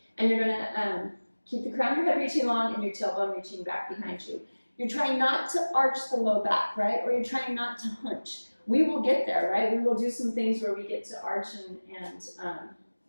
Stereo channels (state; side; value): inverted; both; correlation -1.00